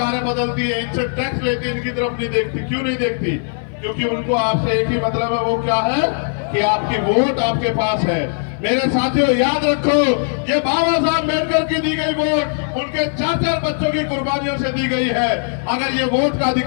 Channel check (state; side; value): silent; right; 60 dB below the other